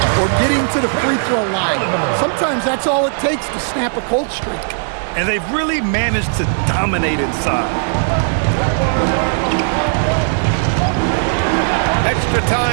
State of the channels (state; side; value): silent; left; digital silence